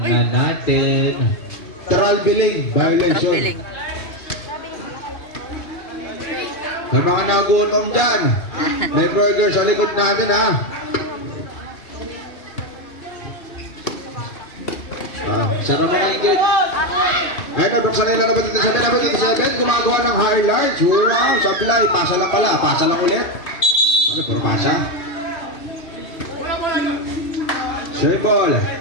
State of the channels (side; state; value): right; late; 2.4 ms